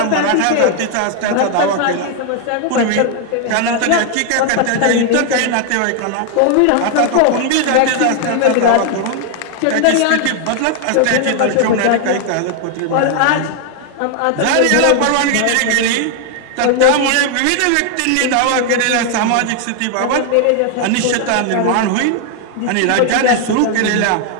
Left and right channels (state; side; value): different; both; correlation 0.00